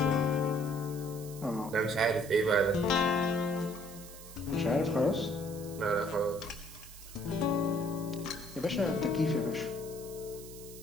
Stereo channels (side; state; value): right; noise; hiss, 16 dB below the sound